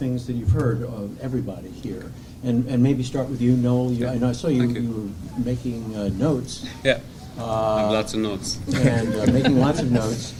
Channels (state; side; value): identical; both; correlation 1.00